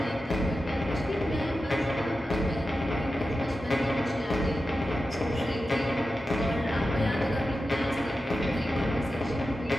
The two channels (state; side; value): normal; both; correlation 0.92